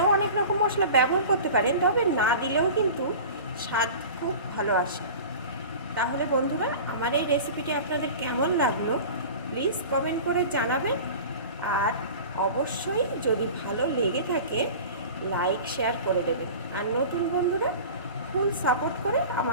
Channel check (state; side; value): inverted; both; correlation -0.37